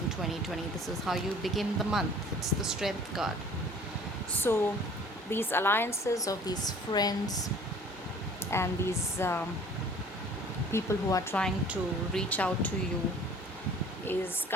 2020? This is how you begin the month. It's the Strength card. So these alliances of these friends and these people who are trying to reach out to you is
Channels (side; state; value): both; normal; correlation 0.50